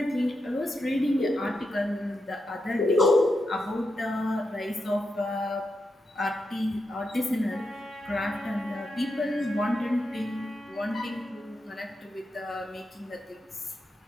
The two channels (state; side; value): normal; both; correlation 0.86